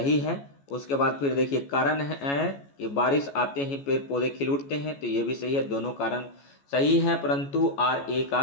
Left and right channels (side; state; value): right; late; 14 ms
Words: है। उसके बाद फिर देखिए कारण है कि बारिश आते ही पेड़ पौधे खिल उठते हैं, तो ये भी सही है। दोनों कारण सही है, परंतु RA का